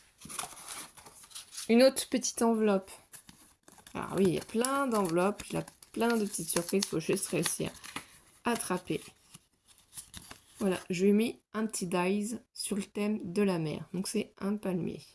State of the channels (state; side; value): identical; both; correlation 1.00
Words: Une autre petite enveloppe. Alors oui, il y a plein d'enveloppes. Il y a plein de petites surprises. Il faut juste réussir à attraper. Voilà, je lui ai mis un petit dies sur le thème de la mer. Donc c'est un palmier.